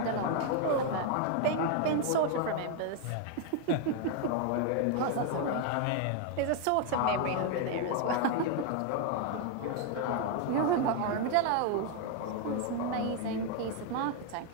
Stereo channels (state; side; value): different; both; correlation 0.01